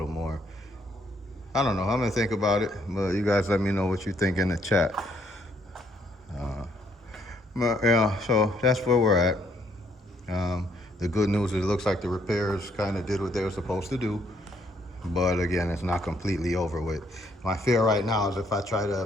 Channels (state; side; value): normal; both; correlation 0.69